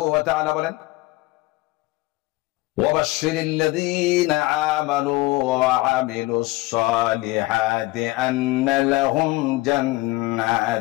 ওয়া তাআলা বলেন, ওয়াবাশশিরিল্লাযীনা আমানু ওয়া আমিলুস সালিহাতি আন্না লাহুম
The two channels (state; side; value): quieter; right; 20.4 dB